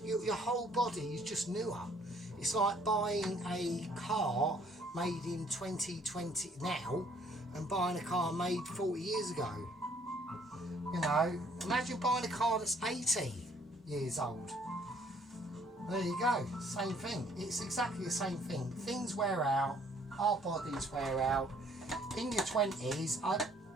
your whole body is just newer. It's like buying a car made in 2020 now and buying a car made 40 years ago. You know, imagine buying a car that's 80 years old. There you go, same thing. It's exactly the same thing. Things wear out, our bodies wear out. In your 20s,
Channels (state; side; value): normal; both; correlation 0.61